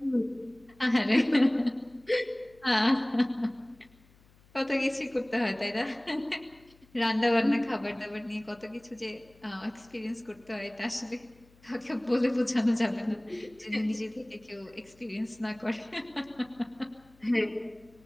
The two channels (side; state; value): left; noise; hum, 29 dB below the sound